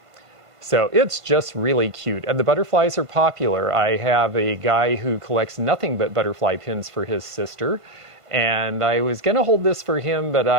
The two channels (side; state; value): left; late; 1.5 ms